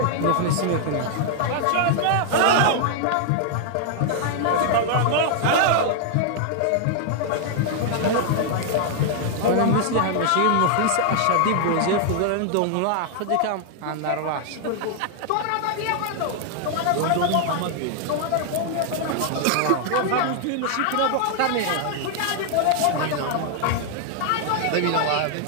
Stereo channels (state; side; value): different; both; correlation 0.00